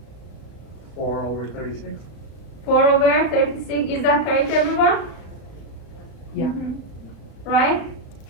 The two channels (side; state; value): right; late; 35 ms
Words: 4/36. 4/36, is that correct everyone? Yeah. Right?